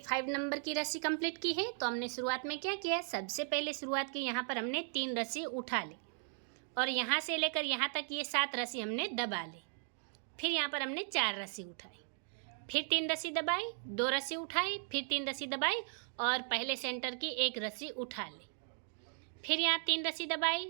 नंबर की रस्सी कंप्लीट की है। तो हमने शुरुआत में क्या किया, सबसे पहले शुरुआत की यहाँ पर हमने 3 रस्सी उठा ली और यहाँ से लेकर यहाँ तक ये 7 रस्सी हमने दबा ली, फिर यहाँ पर हमने 4 रस्सी उठाई, फिर 3 रस्सी दबाई, 2 रस्सी उठाई, फिर 3 रस्सी दबाई और पहले सेंटर की 1 रस्सी उठा ली, फिर यहाँ 3 रस्सी दबाई,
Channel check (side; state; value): left; silent; 53 dB below the other